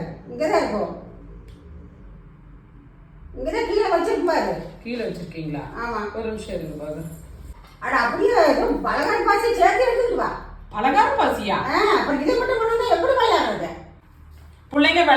இங்கதான் இருக்கும். இங்கதான் கீழே வச்சிருக்கும் பாரு. கீழே வச்சிருக்கீங்களா? ஆமா. ஒரு நிமிஷம் இருங்க பாரு. அட அப்படியே பலகாரம் பாசி சேர்த்து எடுத்துட்டு வா. பலகாரம் பாசியா? அப்புறம் இதை மட்டும் பண்ணா எப்படி விளையாடுறது? பிள்ளைங்க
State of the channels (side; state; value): both; identical; correlation 1.00